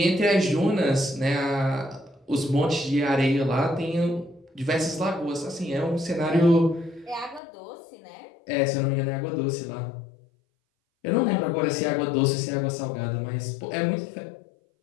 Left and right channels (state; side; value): drops out; right; at 7.4 s